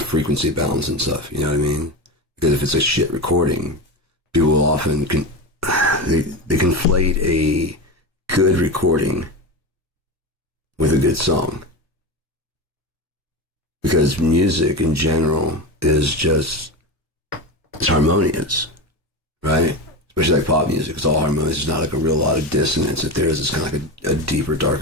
frequency balance and stuff, you know what I mean? Because if it's a shit recording, people will often they conflate a good recording with a good song. Because music in general is just, it's harmonious, right? Especially like pop music, it's all harmonious. There's not like a real lot of dissonance. If there is, it's kind of like a deeper,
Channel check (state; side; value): normal; both; correlation 0.20